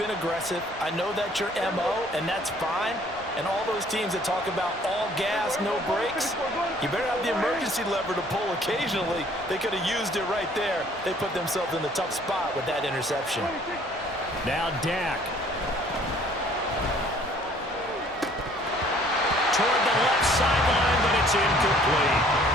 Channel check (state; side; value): normal; both; correlation 0.58